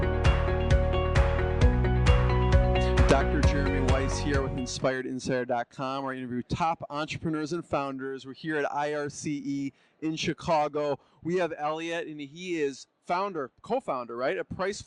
Here with InspiredInsider.com, where I interview top entrepreneurs and founders. We're here at IRCE in Chicago. We have Elliot, and he is co-founder, right, at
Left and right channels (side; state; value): both; identical; correlation 1.00